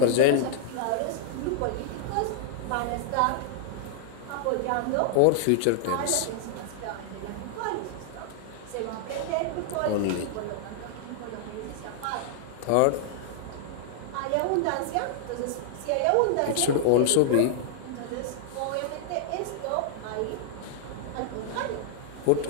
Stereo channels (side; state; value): both; different; correlation -0.01